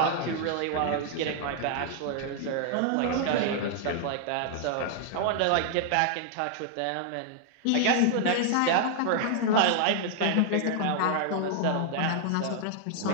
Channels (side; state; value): both; different; correlation -0.01